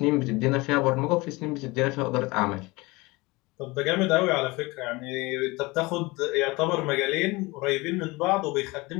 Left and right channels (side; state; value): right; quieter; 23.2 dB